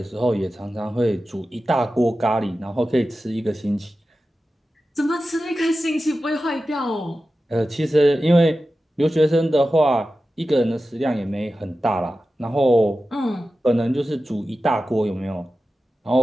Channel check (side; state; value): both; normal; correlation 0.93